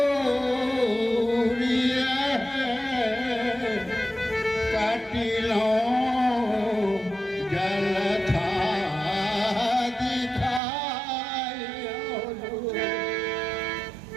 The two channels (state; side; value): drops out; left; at 10.6 s